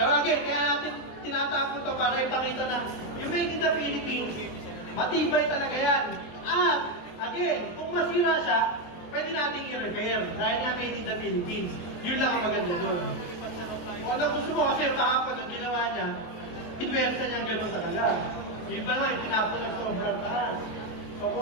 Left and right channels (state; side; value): late; right; 23 ms